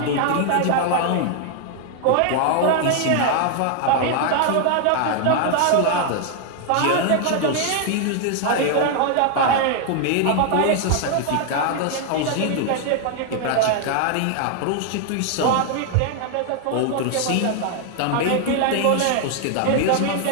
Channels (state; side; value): different; both; correlation 0.00